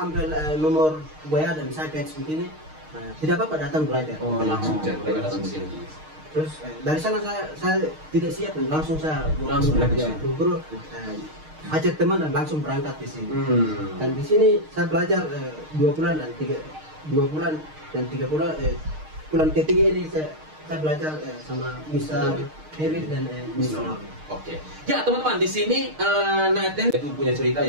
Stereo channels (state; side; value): late; left; 6.5 ms